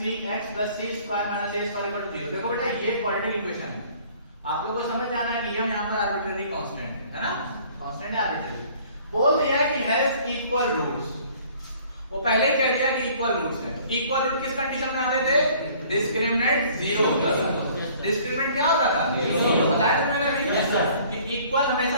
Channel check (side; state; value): both; inverted; correlation -0.55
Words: plus c square minus a square equal to 0। देखो बेटा ये क्वाड्रेटिक इक्वेशन है, आप लोगों को समझ जाना है कि हम यहाँ पर आर्बिट्रेरी कांस्टेंट है ना, कांस्टेंट है आर्बिट्रेरी। बोल दिया है कि हैज इक्वल रूट्स, वो पहले ही कह दिया कि इक्वल रूट्स है। इक्वल रूट किस कंडीशन में आते थे, डिस्क्रिमिनेंट 0 होता था। डिस्क्रिमिनेंट क्या होता था, 0। बताया था मैंने अभी कि इक्वल हमेशा